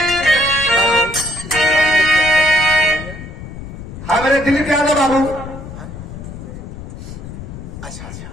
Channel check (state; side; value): noise; left; rumble, 11 dB below the sound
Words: हमारे दिलीप यादव बाबू अच्छा